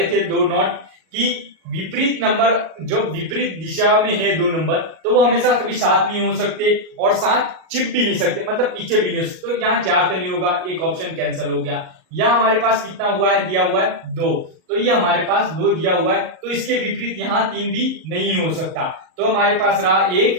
थे 2 नोट कि विपरीत नंबर जो विपरीत दिशा में है 2 नंबर, तो वो हमेशा कभी साथ नहीं हो सकते और साथ चिप भी नहीं सकते, मतलब पीछे भी नहीं हो सकते। तो यहाँ 4 तो नहीं होगा, एक ऑप्शन कैंसिल हो गया। यहाँ हमारे पास कितना हुआ है, दिया हुआ है 2, तो ये हमारे पास 2 दिया हुआ है, तो इसके विपरीत यहाँ 3 भी नहीं हो सकता। तो हमारे पास रहा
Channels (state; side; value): late; left; 38 ms